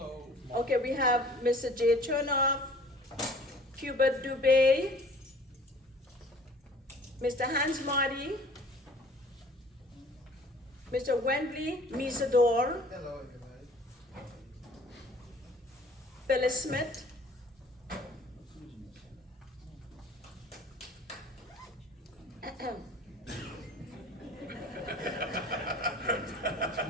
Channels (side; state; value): both; normal; correlation 0.50